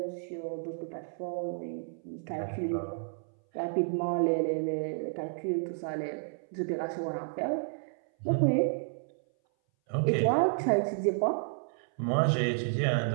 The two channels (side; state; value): left; silent; 57 dB below the other